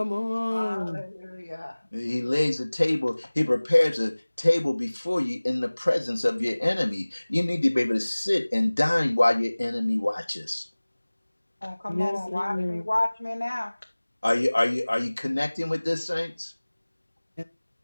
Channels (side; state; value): both; inverted; correlation -1.00